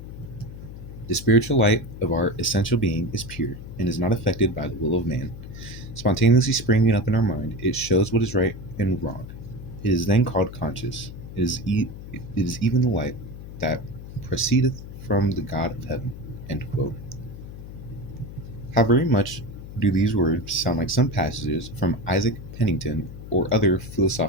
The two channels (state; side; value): noise; left; hum, 12 dB below the sound